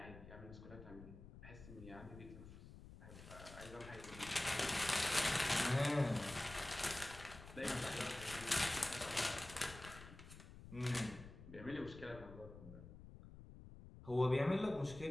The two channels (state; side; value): noise; left; rumble, 15 dB below the sound